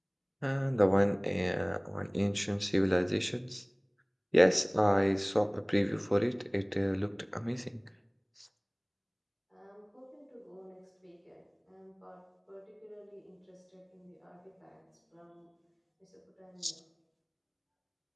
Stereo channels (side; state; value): both; identical; correlation 1.00